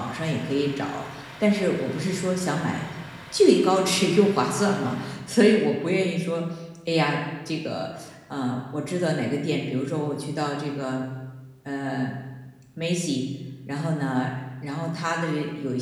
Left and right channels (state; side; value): identical; both; correlation 1.00